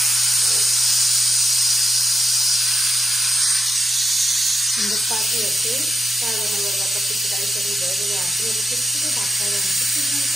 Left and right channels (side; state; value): both; normal; correlation 0.89